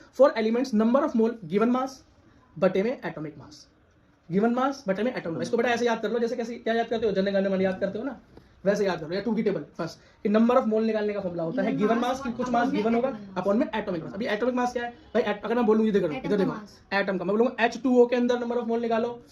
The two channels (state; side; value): identical; both; correlation 1.00